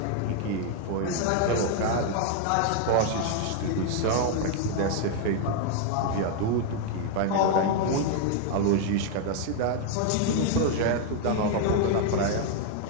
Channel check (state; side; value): different; both; correlation 0.00